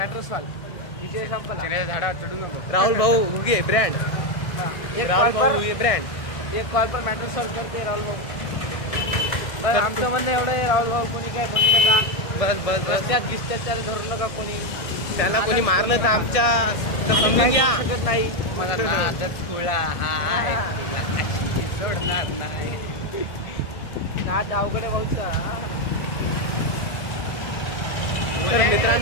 सॉल्व, विजय संपला. झाडा चढू नको. राहुल भाऊ हुगे ब्रँड, राहुल भाऊ हुगे ब्रँड. 1 कॉल पर मॅटर सॉल्व करते राहुल भाऊ. बस आमचं म्हणणं एवढं आहे, राहुल भाऊ कोणी काय म्हणू नका. बस रस्त्यात गिस्त्यात धरू नका कोणी. त्याला कोणी मारलं तर आमच्या तर आम्ही समजून काही घ्या. करू शकत नाही. मला नादच खुळा हाय, तुला अशी सोडणार नाही. नाद अवघड आहे भाऊचा. तर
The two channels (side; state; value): right; late; 1.6 ms